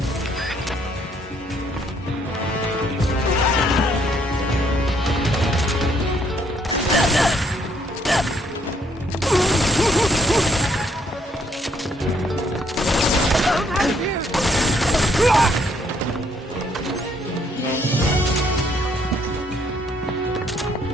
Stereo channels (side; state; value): both; normal; correlation 0.66